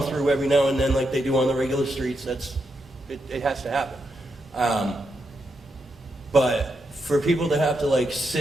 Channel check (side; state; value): both; normal; correlation 0.83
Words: through every now and then, like they do on the regular streets. It has to happen. But for people to have to like